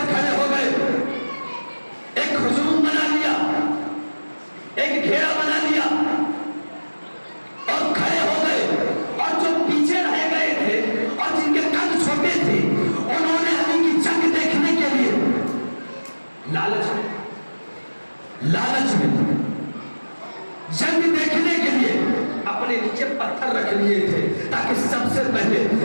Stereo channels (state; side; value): inverted; both; correlation -1.00